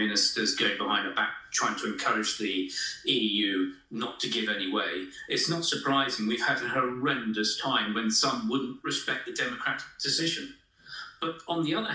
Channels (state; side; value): identical; both; correlation 1.00